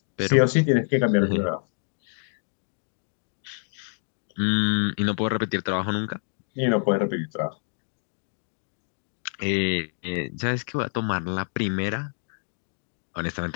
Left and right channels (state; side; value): silent; right; digital silence